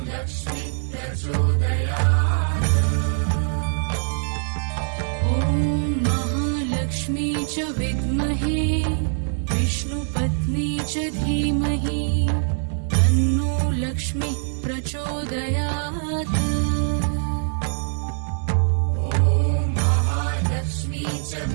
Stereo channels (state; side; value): silent; left; digital silence